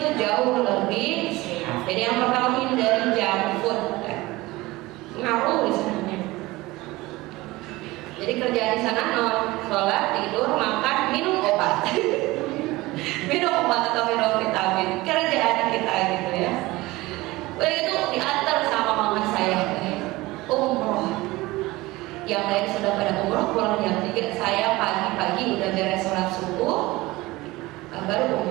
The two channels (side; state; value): left; quieter; 20.1 dB